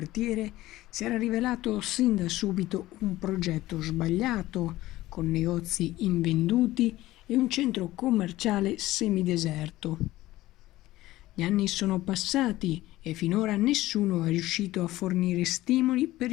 si era rivelato sin da subito un progetto sbagliato, con negozi invenduti e un centro commerciale semideserto. Gli anni sono passati e finora nessuno è riuscito a fornire stimoli per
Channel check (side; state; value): right; quieter; 16.7 dB